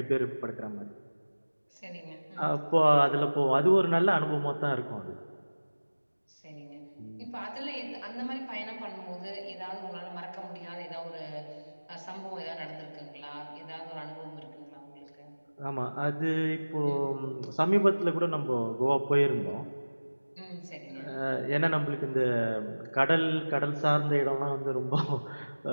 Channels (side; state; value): both; inverted; correlation -1.00